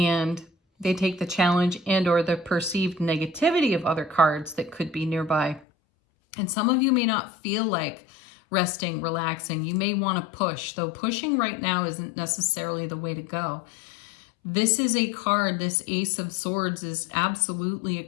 they take the challenge and or the perceived negativity of other cards that could be nearby. And some of you may not feel like resting, relaxing. You may want to push, though pushing right now isn't necessarily the way to go. This is a card, this Ace of Swords is absolutely a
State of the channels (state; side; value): drops out; right; at 5.7 s